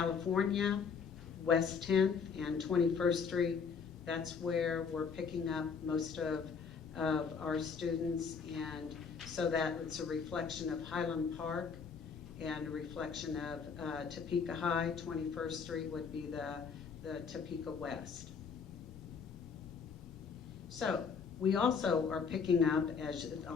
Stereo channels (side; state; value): right; quieter; 5.9 dB